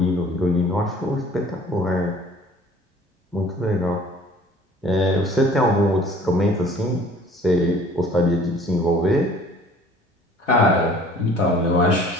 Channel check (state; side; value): normal; both; correlation 0.51